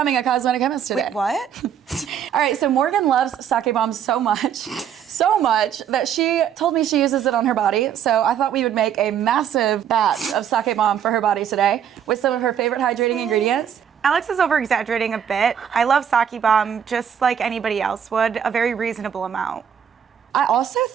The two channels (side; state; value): left; quieter; 8.7 dB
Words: a cosmetic chemist today. Wait, what? All right, so Morgan loves sake bomb so much that she told me she uses it on her body. So I thought we would make a massive batch of sake bomb for her body today with some of her favorite hydrating ingredients. Alex is over-exaggerating a bit. I love sake bomb just like anybody else would, a very reasonable amount. I also